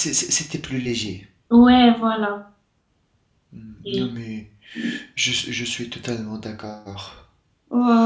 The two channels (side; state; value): both; identical; correlation 1.00